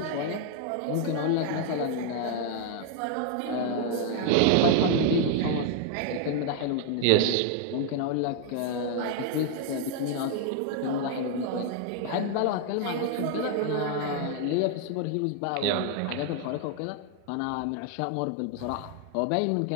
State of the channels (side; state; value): both; different; correlation 0.00